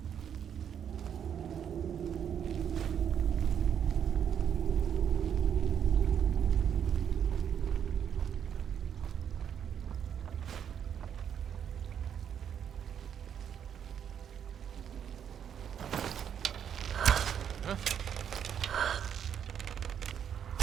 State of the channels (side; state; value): left; quieter; 8.6 dB